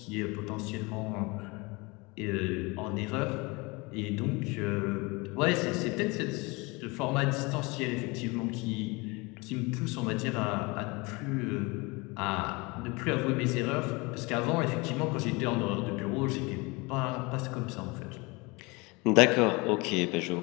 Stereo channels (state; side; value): quieter; right; 26.0 dB